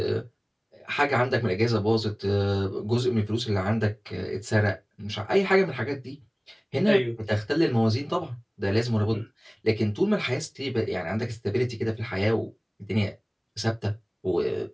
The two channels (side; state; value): both; identical; correlation 1.00